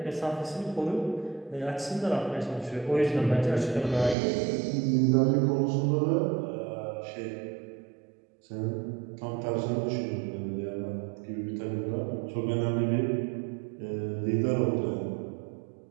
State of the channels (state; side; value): drops out; left; at 4.2 s